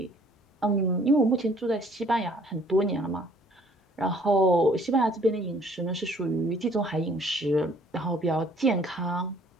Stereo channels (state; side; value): normal; both; correlation 0.58